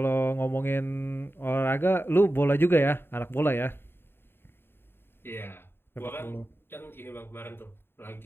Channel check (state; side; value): late; right; 0.11 ms